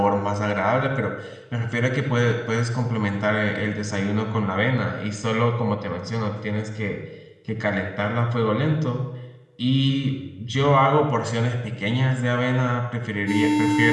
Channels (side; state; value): both; identical; correlation 1.00